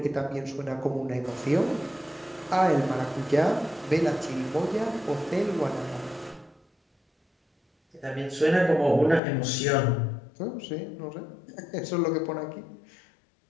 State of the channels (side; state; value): right; drops out; at 9.2 s